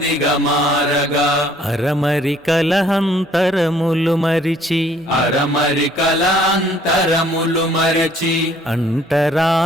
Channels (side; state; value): both; normal; correlation 0.60